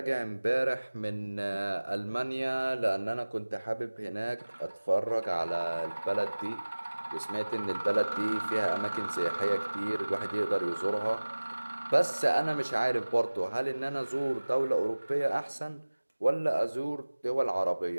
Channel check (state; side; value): inverted; both; correlation -1.00